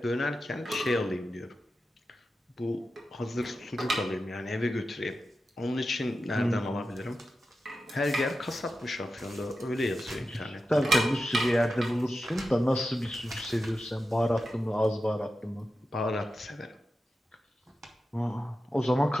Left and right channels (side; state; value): both; normal; correlation 0.91